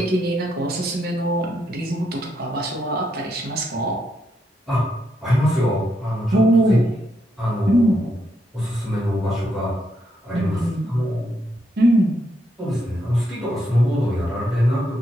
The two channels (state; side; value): normal; both; correlation 0.79